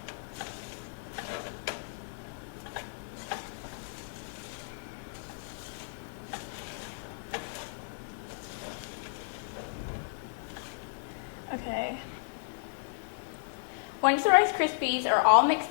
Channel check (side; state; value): right; silent; digital silence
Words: Okay. Once the Rice Krispies are all